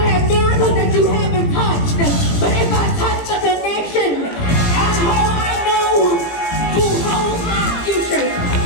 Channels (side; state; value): right; late; 18 ms